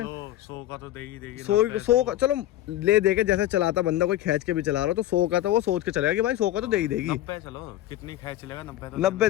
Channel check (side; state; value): right; quieter; 13.8 dB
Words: 100 का तो देगी 100 का चलो ले देके, जैसे चलाता बंदा कोई खींच के भी चला रहा हो तो 100 का तो वो सोच के चलेगा कि भाई 100 का तो दे ही देगी। 90 चलो कितनी खींच लेगा, 90